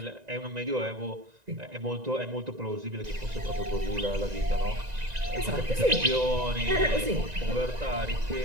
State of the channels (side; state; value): left; late; 1.9 ms